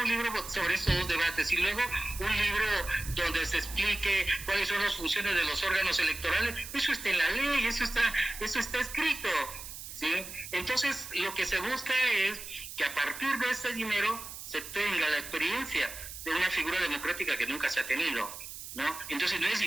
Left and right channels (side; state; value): right; noise; hiss, 11 dB below the sound